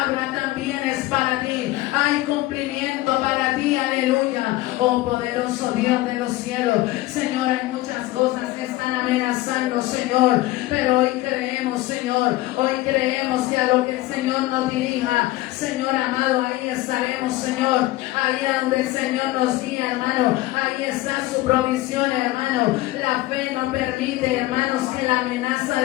también es para ti. Hay cumplimiento para ti, aleluya. Oh poderoso Dios de los cielos, Señor, hay muchas cosas que están amenazando, Señor, pero hoy creemos, Señor, hoy creemos que a lo que el Señor nos dirija, Señor amado, ahí estaremos, Señor, ahí a donde el Señor nos guía, hermano, ahí está su provisión, hermano. La fe no permite, hermanos, que la amenaza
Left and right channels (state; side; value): quieter; right; 17.7 dB